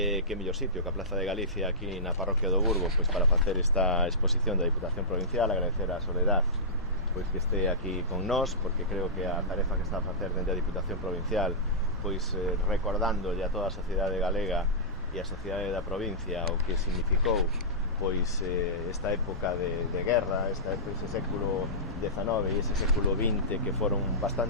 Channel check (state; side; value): normal; both; correlation -0.18